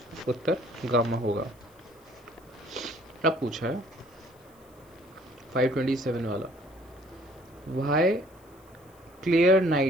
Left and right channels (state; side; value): noise; left; hiss, 30 dB below the sound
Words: उत्तर गामा होगा। अब पूछा है 527 वाला why clear